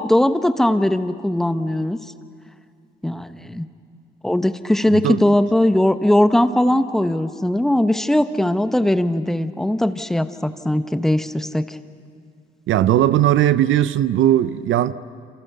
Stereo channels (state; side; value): normal; both; correlation 0.76